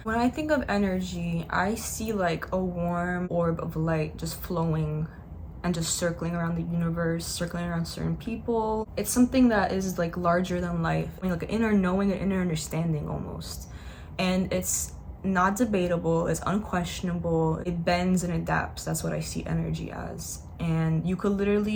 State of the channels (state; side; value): identical; both; correlation 1.00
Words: When I think of energy, I see like a warm orb of light just flowing and just circling around the universe, circling around certain people. It's something that is like larger than life. I mean, like an inner knowing, an inner understanding almost. And it's not debatable, it's unquestionable, it bends and adapts. That's what I see energy as. And you could